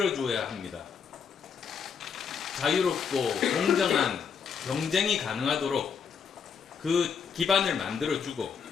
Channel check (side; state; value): right; quieter; 6.6 dB